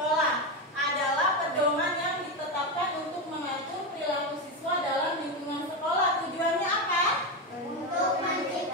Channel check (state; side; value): normal; both; correlation 0.12